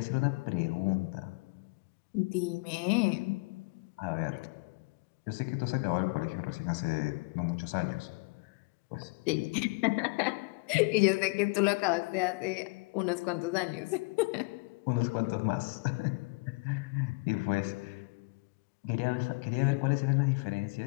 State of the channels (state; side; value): quieter; right; 28.9 dB